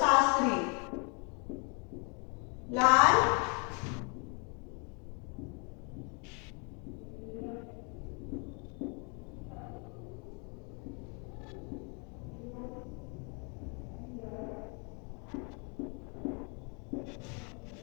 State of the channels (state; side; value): quieter; right; 35.4 dB